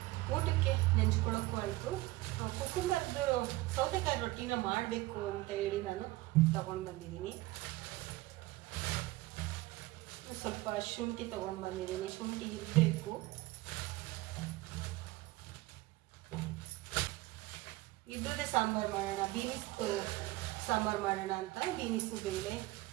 ಊಟಕ್ಕೆ ನೆಂಚ್ಕೊಳ್ಳೋಕ್ಕೂ ಆಯಿತು. ಕುಕ್ಕುಂಬರ್ದು ಸೌತೆಕಾಯಿ ರೊಟ್ಟಿನ ಮಾಡಬೇಕು ಅಂತ ಹೇಳಿ ನಾನು ತಗೊಂಡು ಬಂದಿದ್ದೀನಿ. ಸ್ವಲ್ಪ ಶುಂಠಿ ತಗೊಂಡು ಬಂದಿದ್ದೀನಿ, ಶುಂಠಿ ಇರಬೇಕು. ಇದ್ರದ್ದೇ ಸಾಂಬಾರು ಮಾಡೋಣ, ಬೀನಿಸ್ ಸಾಂಬಾರು ಮಾಡೋಣ ಅಂತ. ಬೀನಿಸು, ಬೇಳೆ,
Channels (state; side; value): quieter; left; 19.2 dB